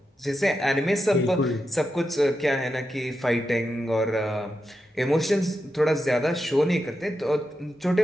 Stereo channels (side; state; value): both; normal; correlation 0.88